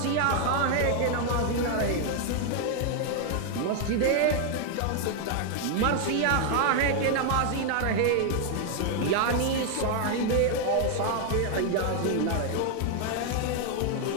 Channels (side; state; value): both; different; correlation 0.00